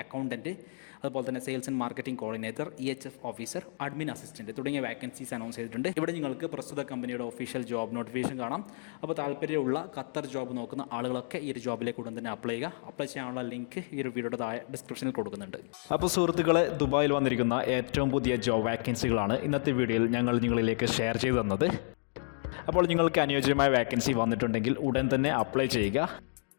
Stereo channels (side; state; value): right; silent; digital silence